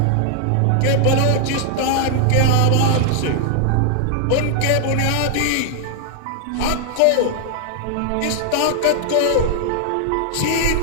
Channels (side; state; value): both; different; correlation 0.00